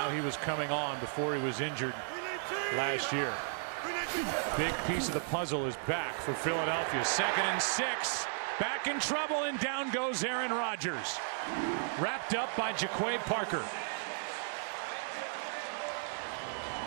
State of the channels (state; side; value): silent; left; digital silence